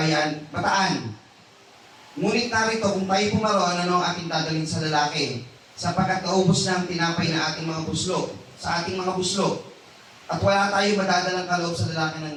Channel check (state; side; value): identical; both; correlation 1.00